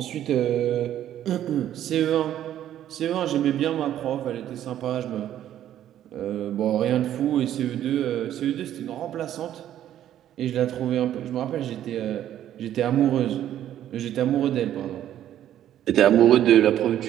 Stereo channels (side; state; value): left; quieter; 11.5 dB